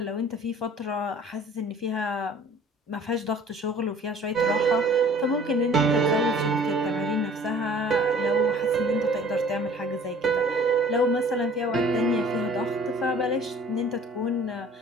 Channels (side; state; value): both; normal; correlation 0.50